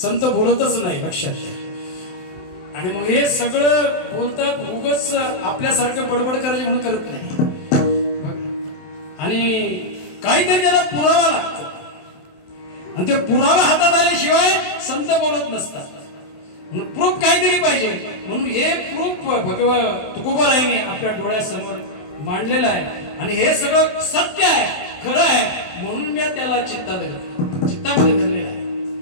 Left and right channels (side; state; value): right; late; 27 ms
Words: संत बोलतच नाही, लक्षात घ्या. आणि मग हे सगळं बोलतात उगच आपल्यासारखं बडबड करायचे म्हणून करत नाही. आणि काहीतरी त्याला पुरावा लागतो. आणि ते पुरावा हातात आल्याशिवाय संत बोलत नसतात. म्हणून प्रूफ काहीतरी पाहिजे. म्हणून हे प्रूफ तुकोबारायांनी आपल्या डोळ्यासमोर मांडलेलं आहे. आणि हे सगळं सत्य आहे, खरं आहे. म्हणून मी त्याला चित्तामध्ये धरलेलं आहे.